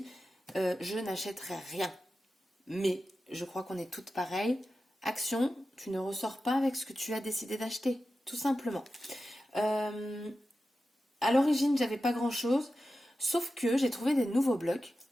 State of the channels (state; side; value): normal; both; correlation 0.92